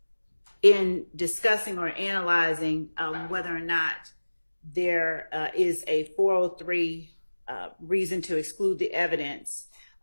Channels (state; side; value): inverted; both; correlation -1.00